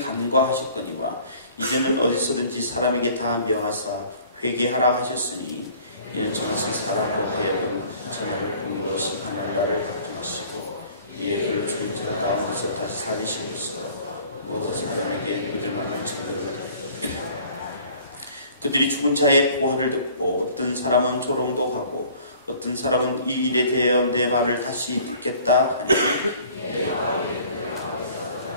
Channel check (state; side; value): inverted; both; correlation -0.52